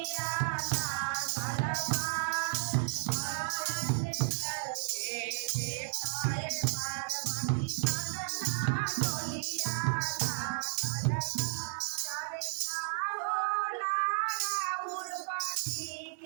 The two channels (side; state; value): left; silent; digital silence